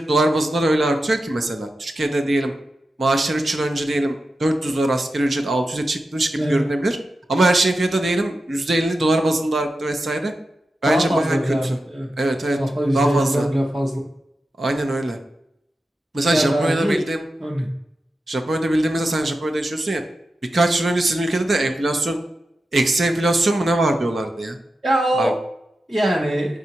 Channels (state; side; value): normal; both; correlation 0.91